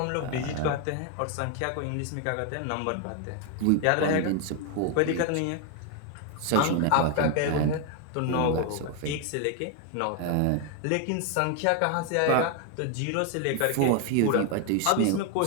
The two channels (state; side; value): different; both; correlation 0.01